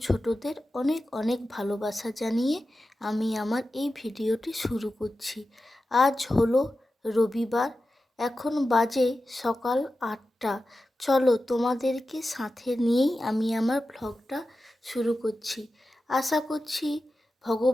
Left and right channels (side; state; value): both; normal; correlation 0.93